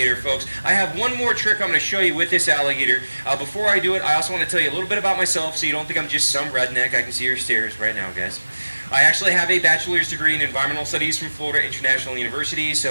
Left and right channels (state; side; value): inverted; both; correlation -1.00